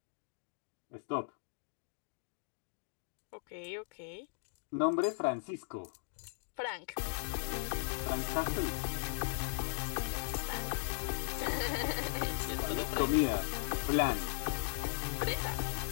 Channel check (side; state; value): right; silent; digital silence